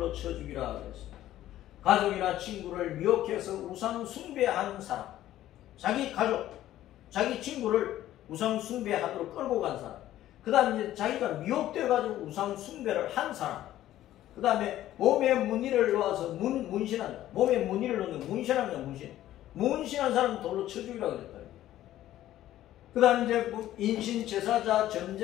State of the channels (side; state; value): right; quieter; 13.5 dB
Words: 쳐 죽이라 그랬습니다. 가족이나 친구를 미혹해서 우상 숭배한 사람, 자기 가족, 자기 친구를 우상 숭배하도록 끌고 간 사람, 그 다음에 자기가 미혹되어가지고 우상 숭배를 한 사람, 그 다음에 몸에 무늬를 놓아서 문신한 자, 몸에 무늬를 놓는 문신한 자, 문신한 사람은 돌로 쳐 죽이라고 그랬다. 그 다음에 이제 인신 제사자,